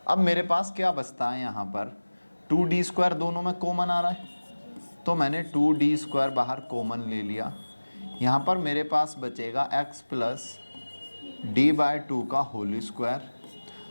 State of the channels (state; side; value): inverted; both; correlation -1.00